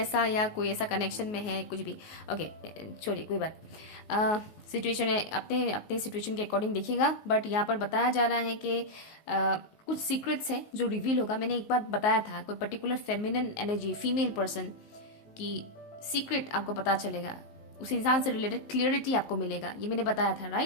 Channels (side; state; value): right; late; 19 ms